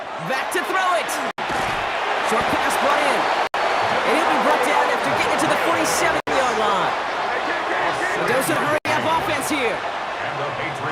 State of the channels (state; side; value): identical; both; correlation 1.00